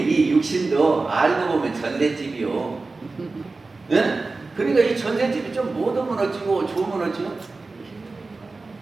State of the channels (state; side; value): quieter; left; 3.7 dB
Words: 육신도 알고 보면 전셋집이요. 응? 그러니까 이 전셋집이 좀 못하면 어찌고 좋으면 어찌고?